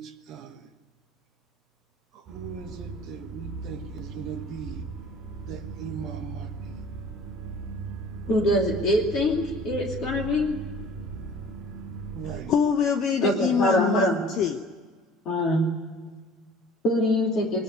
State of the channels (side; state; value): both; normal; correlation 0.48